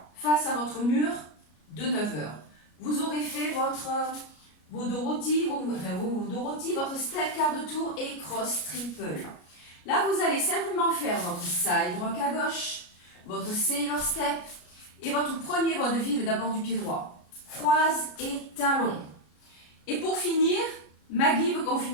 face à votre mur de 9 heures. Vous aurez fait vos Dorothy, votre step quart de tour et cross triple. Là, vous allez simplement faire votre side rock à gauche, votre sailor step et votre premier vaudeville d'abord du pied droit. Croise et talon. Et pour finir, Maggie veut qu'on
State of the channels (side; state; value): right; late; 33 ms